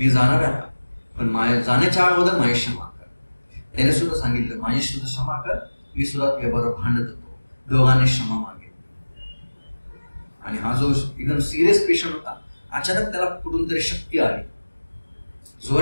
जाणार आहे पण माझ्या जाण्याच्या अगोदर माझी क्षमा कर. त्याने सुद्धा सांगितलं माझी सुद्धा क्षमा कर, मी सुद्धा तुझ्याबरोबर भांडत होतो. दोघांनी क्षमा मागितली. आणि हा जो एकदम सिरियस पेशंट होता, अचानक त्याला कुठून तरी शक्ती आली,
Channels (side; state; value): both; inverted; correlation -1.00